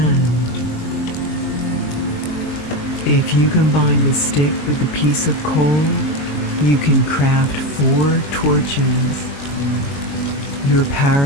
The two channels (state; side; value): late; right; 21 ms